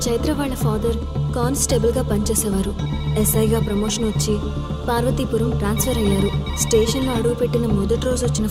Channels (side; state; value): both; identical; correlation 1.00